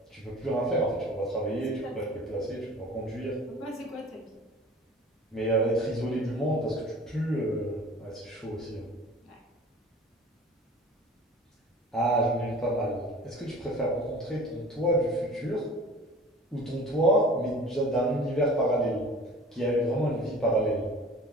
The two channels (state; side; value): normal; both; correlation 0.43